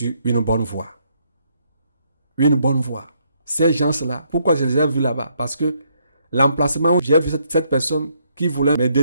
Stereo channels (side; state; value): both; inverted; correlation -0.72